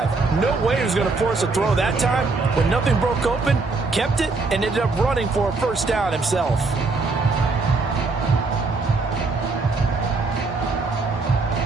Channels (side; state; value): left; quieter; 3.8 dB